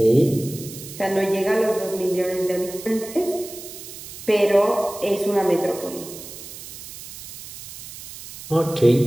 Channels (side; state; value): right; noise; hiss, 13 dB below the sound